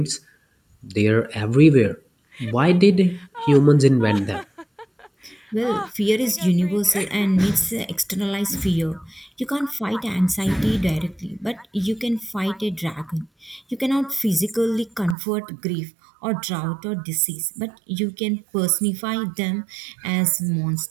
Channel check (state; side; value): drops out; left; at 15.2 s